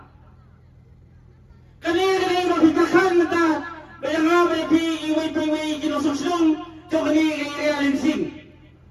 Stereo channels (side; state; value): both; identical; correlation 1.00